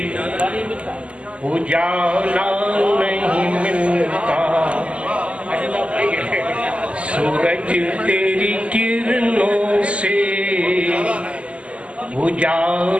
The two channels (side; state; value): left; late; 0.057 ms